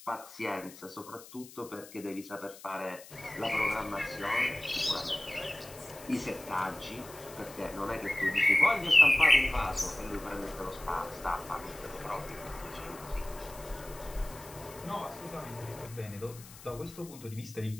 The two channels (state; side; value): noise; left; hiss, 18 dB below the sound